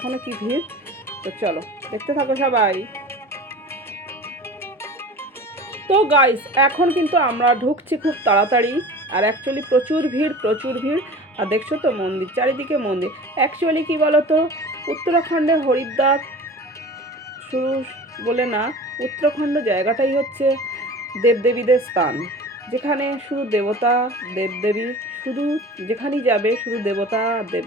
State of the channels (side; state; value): both; normal; correlation 0.38